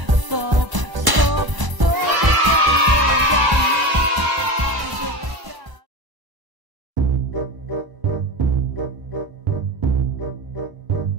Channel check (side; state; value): left; late; 1.0 ms